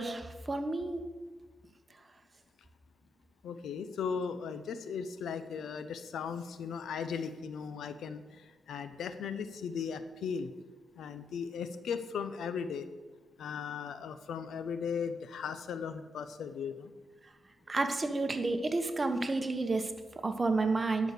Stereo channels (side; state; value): both; normal; correlation 0.80